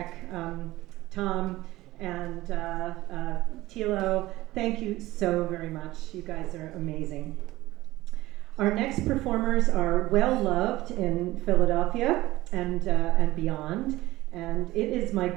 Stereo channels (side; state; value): left; quieter; 17.7 dB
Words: Tom and Tilo. Thank you so very much. You guys are amazing. Our next performers are well loved in Philadelphia and beyond, and it is my